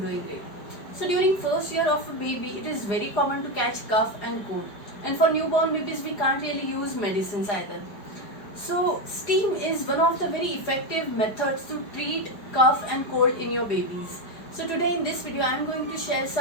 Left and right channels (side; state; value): right; late; 4.9 ms